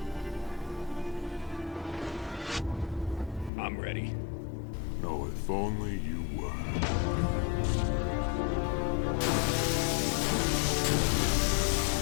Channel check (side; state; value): right; drops out; at 3.5 s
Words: I'm ready. No, if only you were.